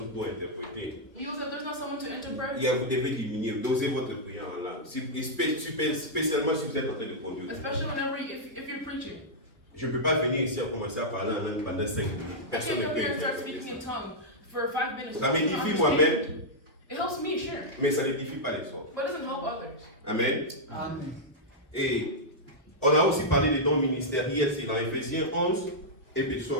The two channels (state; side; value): normal; both; correlation -0.08